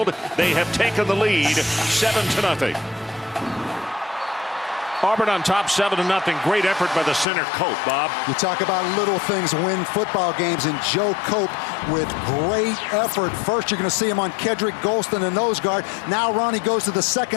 They have taken the lead 7-0. Auburn on top 7-0. Great effort by the center, Cope, Bob. You talk about little things win football games, and Joe Cope with great effort. First, you're going to see him on Kedrick Golston, the nose guard. Now Ronnie goes to the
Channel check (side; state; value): right; drops out; at 7.2 s